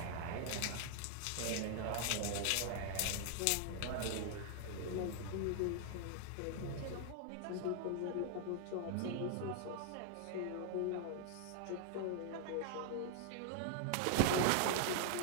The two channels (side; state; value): both; different; correlation 0.00